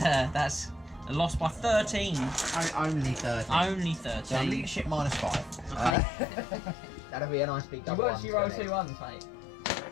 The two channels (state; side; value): drops out; right; at 6.0 s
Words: a loss by 13. Only 13. Only 13. So leadership -5. Okay. That'll be a nice big double. You actually roll 2 1s, mate.